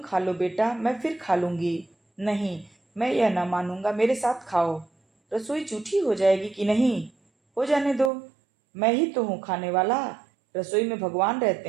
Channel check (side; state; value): left; drops out; at 8.1 s